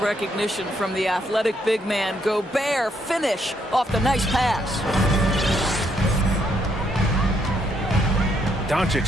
from the athletic big man. Gobert finish off the nice pass.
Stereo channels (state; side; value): normal; both; correlation 0.74